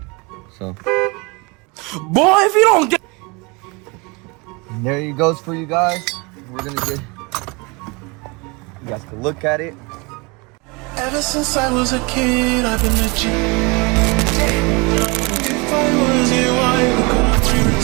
So, Boy, if you don't get. and there it goes for you guys. We're gonna get. You guys can look at it. Ever since I was a kid, I've been a G. If I was you, I would go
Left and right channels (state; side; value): quieter; left; 28.2 dB